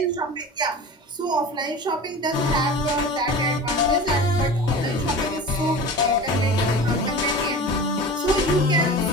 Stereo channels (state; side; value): normal; both; correlation 0.35